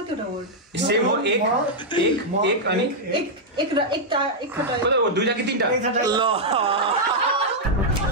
सेम हो एक अनि दुईटा कि तीनटा ल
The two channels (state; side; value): normal; both; correlation -0.04